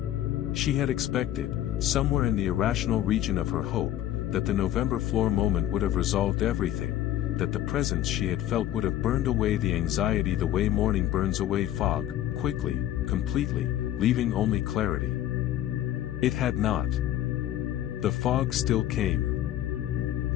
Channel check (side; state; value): right; quieter; 12.6 dB